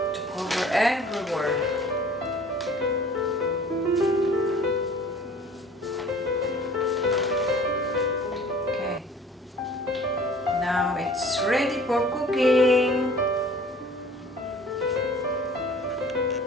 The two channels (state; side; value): normal; both; correlation 0.48